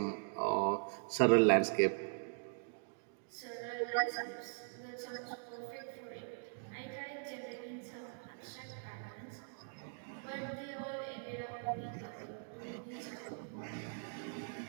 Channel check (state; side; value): silent; left; digital silence